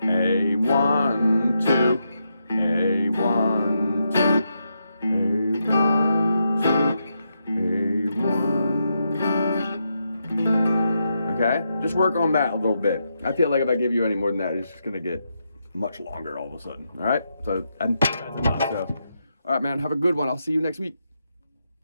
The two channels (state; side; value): inverted; both; correlation -0.82